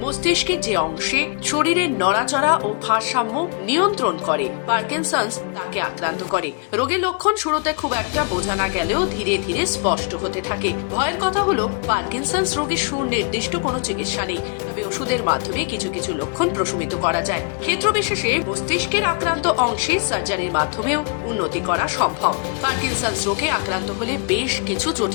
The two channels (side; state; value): right; quieter; 33.9 dB